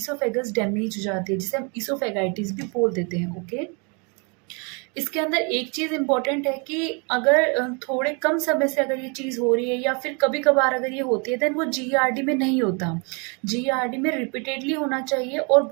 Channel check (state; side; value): quieter; left; 33.9 dB